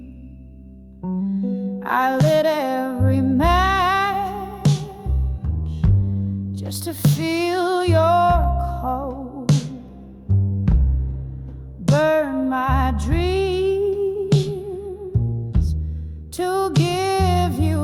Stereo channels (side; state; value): both; identical; correlation 1.00